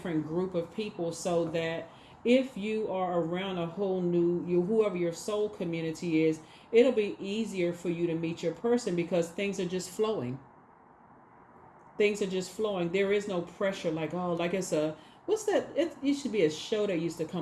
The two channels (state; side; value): identical; both; correlation 1.00